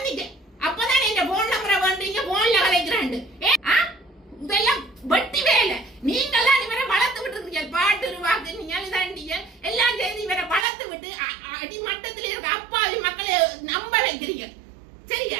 அப்பதான் இந்த போன் நம்பரை வந்தீங்க, போன்ல கலைக்கிறாண்டு. இதெல்லாம் வட்டி வேலை. நீங்கெல்லாம் இவரை வளர்த்து விட்டு இருக்கீங்க, பாட்டு வாக்கு நீங்க இதாண்டிய எல்லாம் செய்து இவரை வளர்த்து விட்டு அடிமட்டத்தில் இருக்க அப்பாவி மக்களை நம்ப வைக்கிறீங்க.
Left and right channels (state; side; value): drops out; left; at 10.7 s